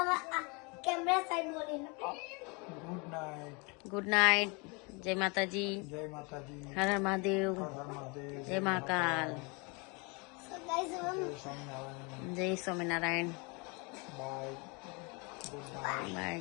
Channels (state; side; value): quieter; right; 30.5 dB